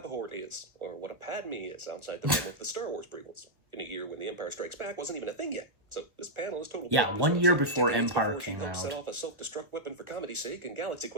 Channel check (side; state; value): left; late; 1.1 ms